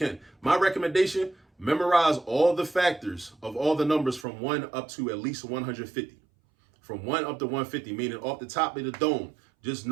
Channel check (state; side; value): drops out; left; at 4.2 s